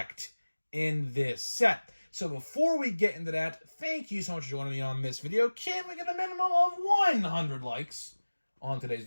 in this set. So before we get into that, thank you so much for joining me on this video. Can we get a minimum of 100 likes on today's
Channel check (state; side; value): inverted; both; correlation -1.00